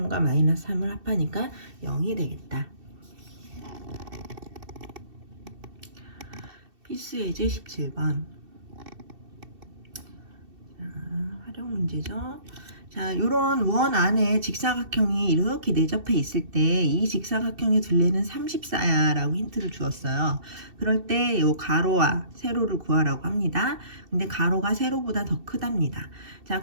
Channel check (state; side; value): late; left; 2.7 ms